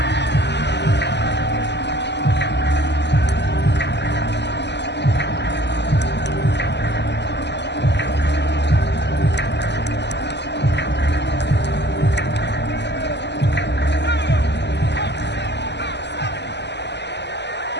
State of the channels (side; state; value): right; late; 0.50 ms